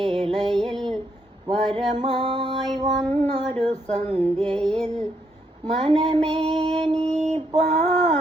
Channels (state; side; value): normal; both; correlation 0.75